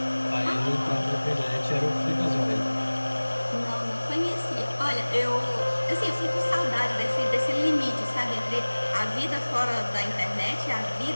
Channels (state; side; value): inverted; both; correlation -1.00